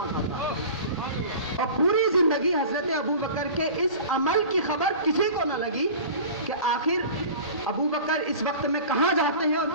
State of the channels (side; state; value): both; inverted; correlation -0.38